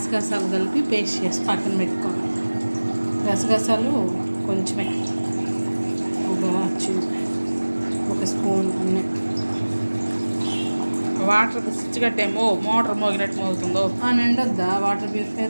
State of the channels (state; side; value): inverted; both; correlation -1.00